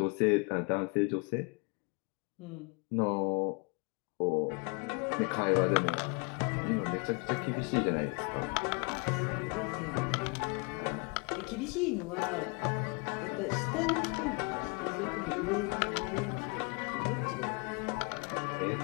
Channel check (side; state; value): right; quieter; 32.4 dB